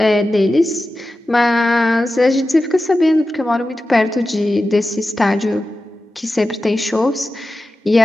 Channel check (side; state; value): both; normal; correlation 0.93